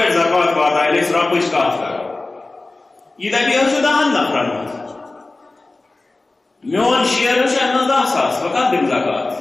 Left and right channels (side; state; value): right; quieter; 3.2 dB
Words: زکات بات ہے لیکن رب کچھ کات کر یہ دبی ہو شدہ ہن نفرن میون شیئر شاید 10 ساس وقت دم